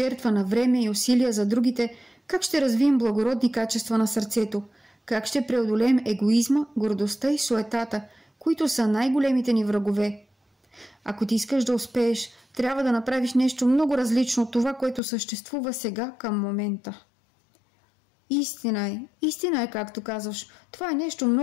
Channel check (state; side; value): drops out; right; at 15.0 s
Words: на време и усилия за другите, как ще развием благородни качества на сърцето? Как ще преодолеем егоизма, гордостта и суетата, които са най-големите ни врагове? Ако ти искаш да успееш, трябва да направиш нещо много различно от това, което съществува сега към момента. Истина е, както казваш. Това е нещо